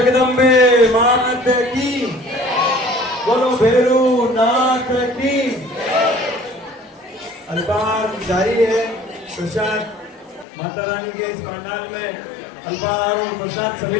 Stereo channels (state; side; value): drops out; right; at 10.5 s